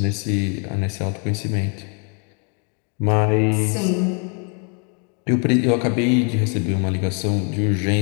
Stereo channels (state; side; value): quieter; right; 38.6 dB